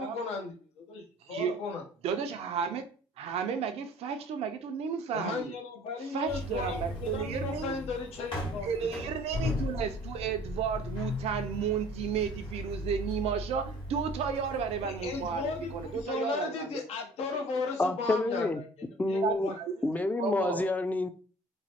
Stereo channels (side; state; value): both; normal; correlation 0.49